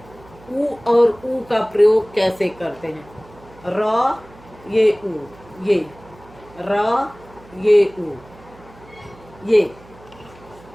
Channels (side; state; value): right; noise; hum, 23 dB below the sound